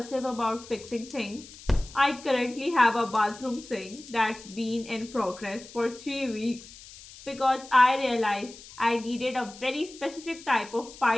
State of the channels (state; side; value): noise; left; hiss, 18 dB below the sound